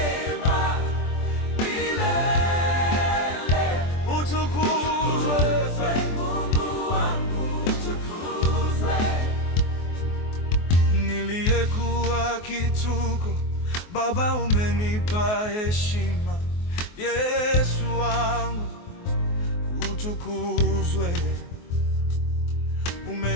utukuzwe Mungu wangu, niliyekuwa kituko, Baba umenipa heshima. Yesu wangu utukuzwe,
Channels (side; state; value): right; late; 24 ms